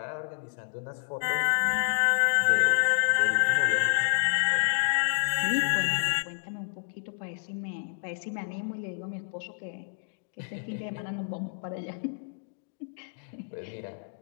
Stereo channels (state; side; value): silent; right; digital silence